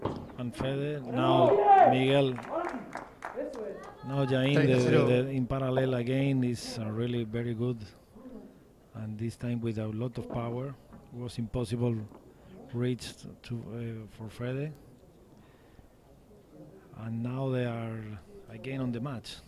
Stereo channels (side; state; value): both; identical; correlation 1.00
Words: and Fede, now Miguel, now Jain in parallel again is really very good, and this time with a lot of power. It was impossible reach for Fede, and now they are again on the match.